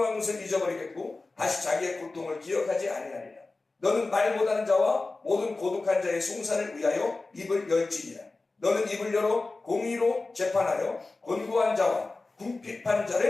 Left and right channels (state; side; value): quieter; right; 3.4 dB